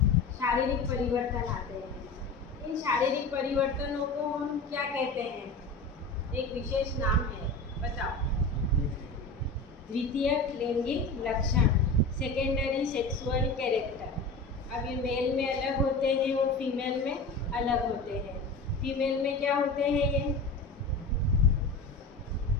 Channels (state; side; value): quieter; right; 3.3 dB